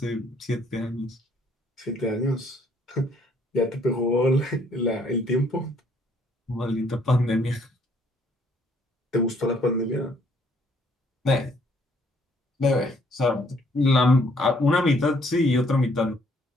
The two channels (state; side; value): normal; both; correlation 0.65